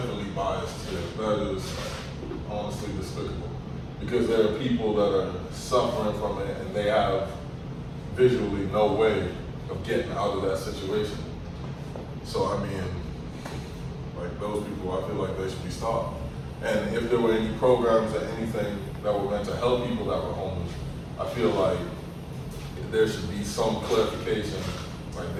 biased here, that is honestly despicable. Because there are people that are suffering from it and they have visually no way of getting out of that situation. So, I mean, like those people, I feel like they should be stopped. And if there were any programs or anything that were meant to help people that were homeless, I feel like there should be some clarification, like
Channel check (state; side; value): identical; both; correlation 1.00